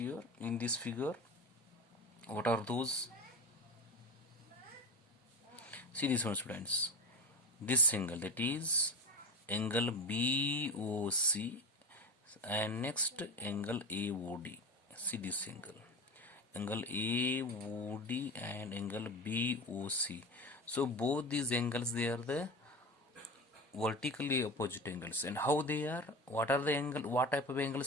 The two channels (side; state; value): both; normal; correlation 0.27